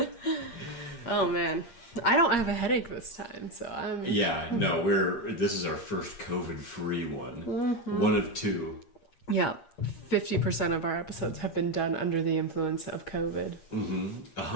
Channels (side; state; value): right; late; 8.6 ms